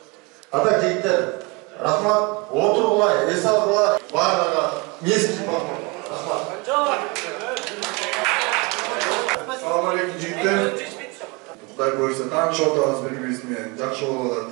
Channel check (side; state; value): left; quieter; 28.3 dB